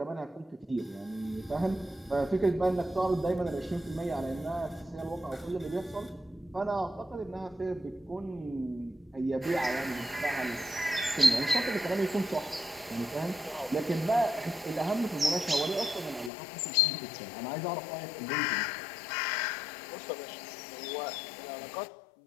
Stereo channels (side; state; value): right; drops out; at 16.3 s